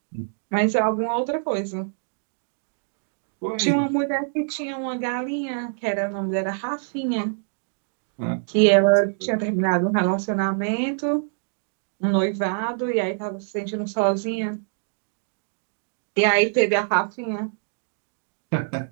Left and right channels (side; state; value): left; silent; digital silence